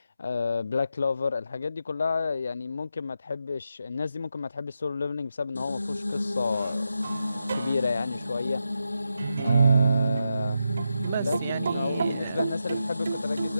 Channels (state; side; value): inverted; both; correlation -0.86